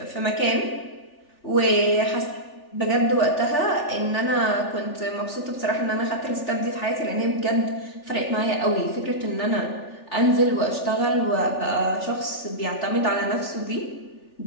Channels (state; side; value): late; right; 3.4 ms